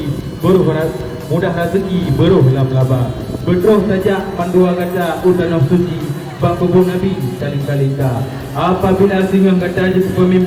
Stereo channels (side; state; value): both; identical; correlation 1.00